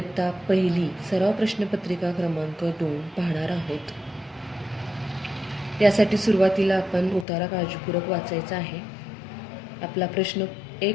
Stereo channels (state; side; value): drops out; right; at 7.2 s